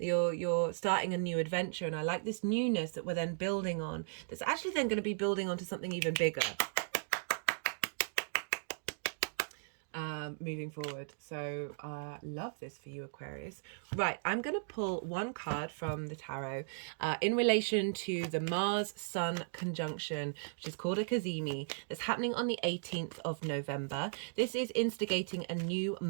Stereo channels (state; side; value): silent; left; digital silence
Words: starting a new adventure, and I like this newness that we're then building on. That's actually then going to be building onto something even bigger. Moving forward. So love this for you, Aquarius. Right, I'm going to pull one card from the tarot in relation to the Mars Sun conjunction, which is called a Cazimi, that's happening on the 18th of November. This is instigating a new